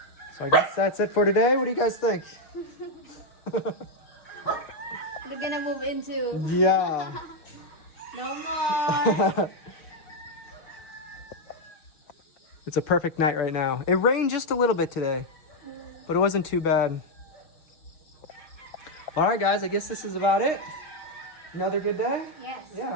So I guess that's it for today. What do you guys think? We're gonna move into Yeah. no more. It's a perfect night right now. It rained just a little bit today, but it wasn't too bad. All right, guys, I guess this is about it. Another good day? Yes. Yeah,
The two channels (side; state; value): right; late; 6.3 ms